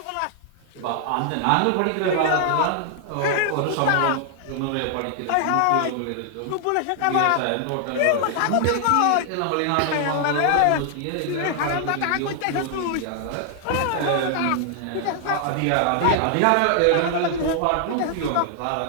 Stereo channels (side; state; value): both; different; correlation 0.00